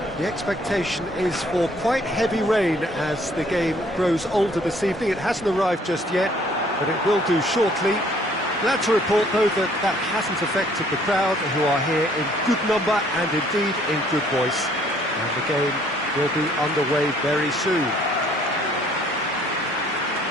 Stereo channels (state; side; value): normal; both; correlation 0.61